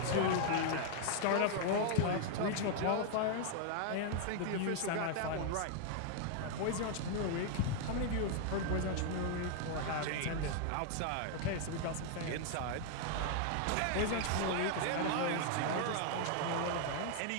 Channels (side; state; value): both; different; correlation 0.00